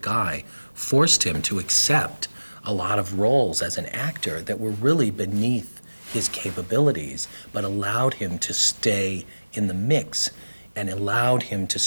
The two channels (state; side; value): inverted; both; correlation -1.00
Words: eye forced him to accept a lot of roles as an actor that were really beneath his capabilities, but allowed him to stay in the mix and allowed him to